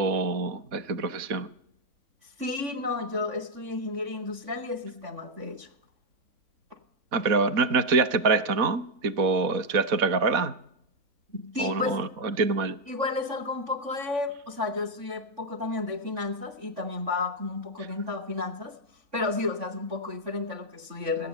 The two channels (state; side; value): late; left; 3.5 ms